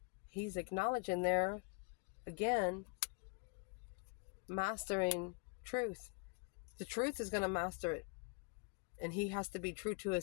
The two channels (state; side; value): quieter; right; 34.9 dB